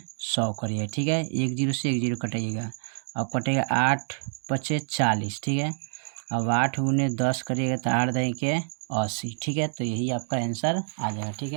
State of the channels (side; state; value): left; silent; 59 dB below the other